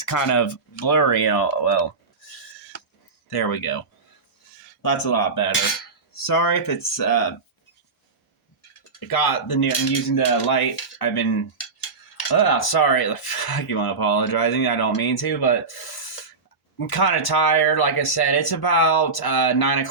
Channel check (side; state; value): left; quieter; 4.3 dB